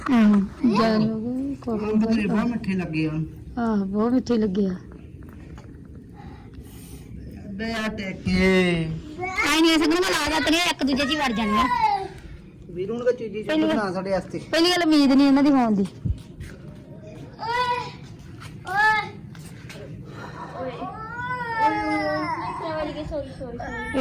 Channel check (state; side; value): identical; both; correlation 1.00